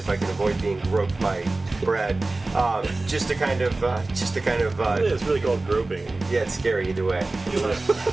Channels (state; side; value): quieter; left; 3.1 dB